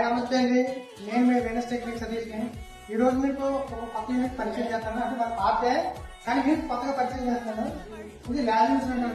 నమస్తే అండి, నేను మీ వెనస్ టెక్నిక్ సతీష్ ని. ఈ రోజు మీకు ఒక కొత్త యూనిట్ పరిచయం చేస్తాను. అంటే మన పాతే కానీ యూనిట్ కొత్తగా పరిచయం చేస్తాను. ఇది ల్యాబ్ ఇన్స్ట్రుమెంట్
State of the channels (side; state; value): both; identical; correlation 1.00